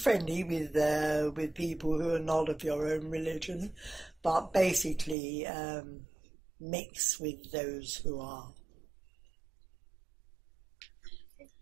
with people who are not of your own religion, but basically mix with those who are.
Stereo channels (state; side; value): drops out; left; at 5.2 s